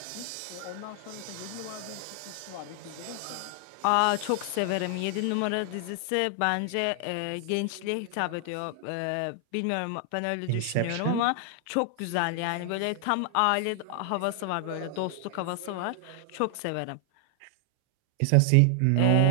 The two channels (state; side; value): different; both; correlation 0.00